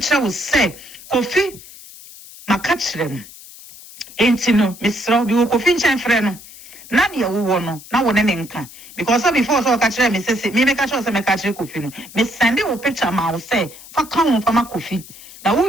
was say Kofi ma catcher me enti no misro bi Kofi nchan frɛ no na de wo no na wo ne nka because before so catcher me say me catcher say me catcher Kofi no me send wo picture ma wo say fa kan wo fa ma Kofi na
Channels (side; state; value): left; noise; hiss, 18 dB below the sound